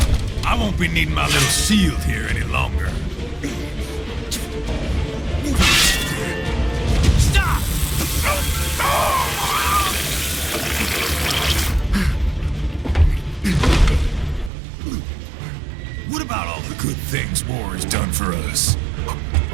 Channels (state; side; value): drops out; left; at 14.5 s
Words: I won't be needing my little shield here any longer. Stop! What about all the good things war has done for us?